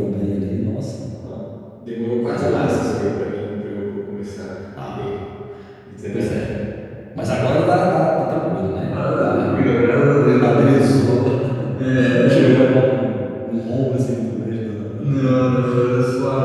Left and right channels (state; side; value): identical; both; correlation 1.00